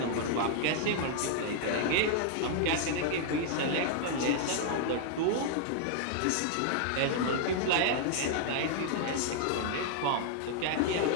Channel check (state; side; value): different; both; correlation -0.01